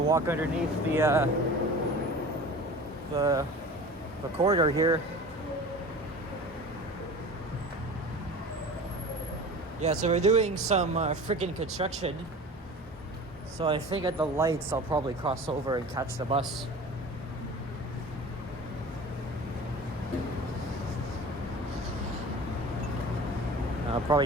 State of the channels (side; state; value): both; normal; correlation 0.38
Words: walk underneath the corridor here. Yeah, so we're doing some freaking construction. So I think at the lights I'll probably cross over and catch the bus. I'll probably